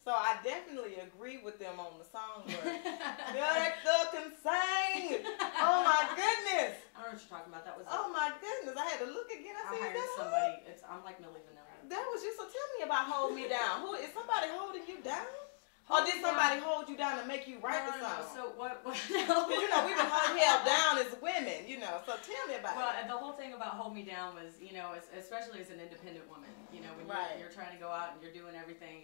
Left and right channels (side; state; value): right; silent; digital silence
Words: So I definitely agree with them on the Songbird. Director can sing. Oh my goodness. I don't know what you're talking about. That was. Oh my goodness. I had to look again. I said, hired somebody. I'm like Millie Vanilli. That was you. So tell me about Hold Me Down. Who is somebody holding you down? Or did somebody hold you down to make you write the song? So what? Because we can hold held down as women, So tell me about it. Well, the whole thing about Hold Me Down was, especially as an independent woman, when you're trying to go out and you're doing